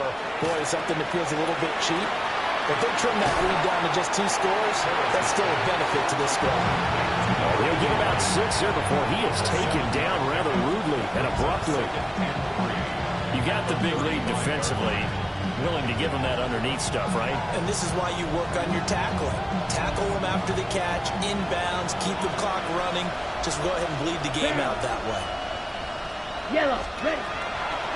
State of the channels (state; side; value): identical; both; correlation 1.00